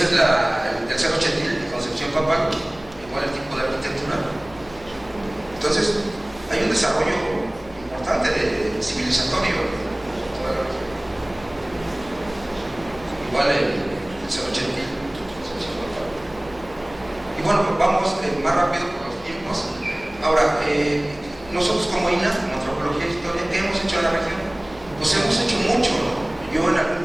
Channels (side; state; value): left; noise; hum, 21 dB below the sound